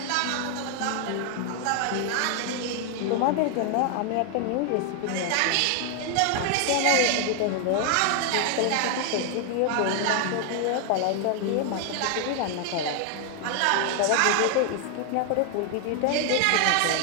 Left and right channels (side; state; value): both; different; correlation 0.00